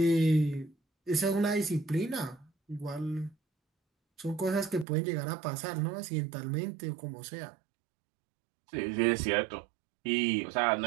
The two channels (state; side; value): drops out; left; at 4.9 s